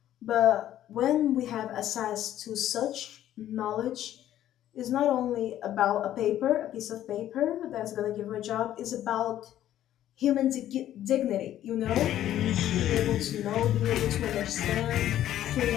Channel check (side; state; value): right; quieter; 12.2 dB